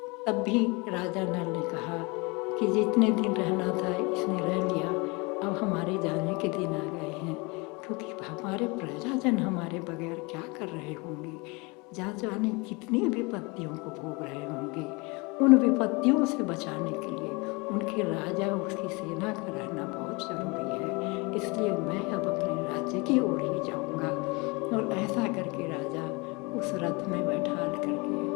तब भी राजा नल ने कहा कि जितने दिन रहना था इसने रह लिया, अब हमारे जाने के दिन आ गए हैं, क्योंकि हमारे प्रजाजन हमारे बगैर क्या कर रहे होंगे, जा जाने कितनी विपत्तियों को भोग रहे होंगे। उन विपत्तियों से बचाने के लिए उनके राजा उसकी सेना का रहना बहुत जरूरी है, इसलिए मैं अब अपने राज्य की ओर ही जाऊंगा। और ऐसा करके राजा उस रथ में बैठाल करके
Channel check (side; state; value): right; quieter; 27.4 dB